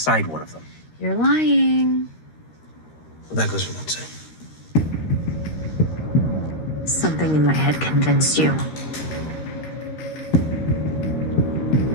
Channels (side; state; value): right; late; 13 ms